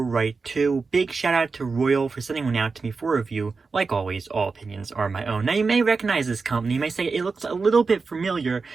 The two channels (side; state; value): left; quieter; 4.5 dB